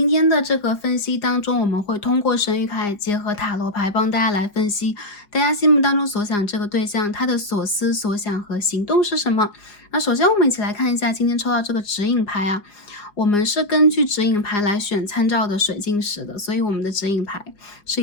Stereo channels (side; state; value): right; late; 4.9 ms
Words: 天的这个分析当中，我们会通过神谕卡结合塔罗牌帮大家来分析大家心目当中所想这个对象他的所思所想和行动是什么。那首先我们一起来看一下今天抽到这个指引牌啊，我们是根据指引牌来选参照的水晶石的，所以我们的指引牌